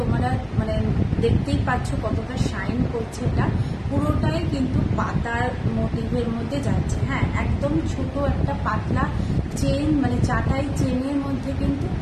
দেখতেই পাচ্ছ কতটা শাইন করছে। এটা পুরোটাই কিন্তু পাতার মোটিভের মধ্যে যাচ্ছে। হ্যাঁ, একদম ছোট একটা পাতলা চেন, চাটাই চেনের মধ্যে কিন্তু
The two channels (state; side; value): identical; both; correlation 1.00